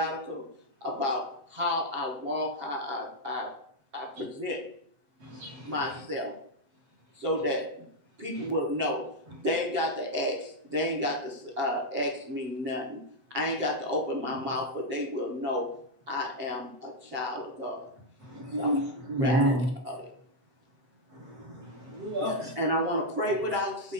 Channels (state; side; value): late; left; 7.9 ms